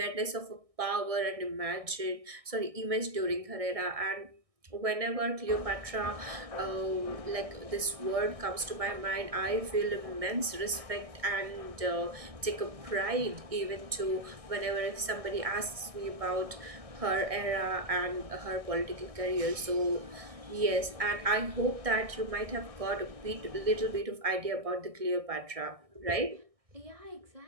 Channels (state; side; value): late; left; 1.6 ms